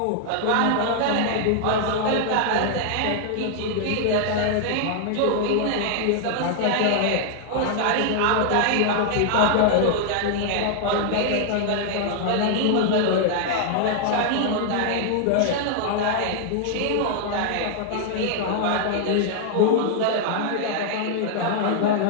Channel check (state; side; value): different; both; correlation -0.01